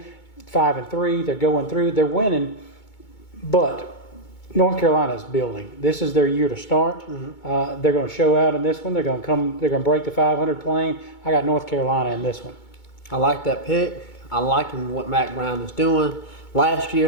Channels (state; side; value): late; right; 2.2 ms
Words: 5-3, they're going through, they're winning, but North Carolina is building. This is their year to start. They're going to show out in this one. They're going to break the 500 plane. I got North Carolina in this one. I like that pick. I like what Mac Brown is doing. Last